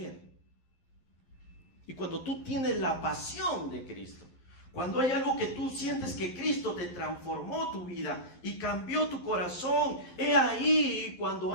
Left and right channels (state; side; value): late; right; 11 ms